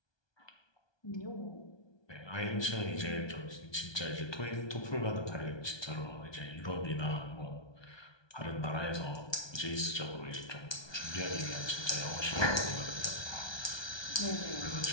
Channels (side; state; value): right; late; 1.2 ms